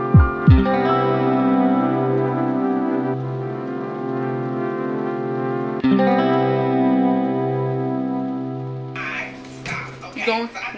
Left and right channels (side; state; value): both; identical; correlation 1.00